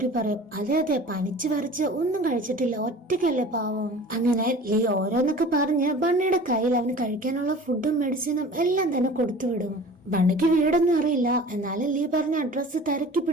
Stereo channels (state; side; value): normal; both; correlation 0.42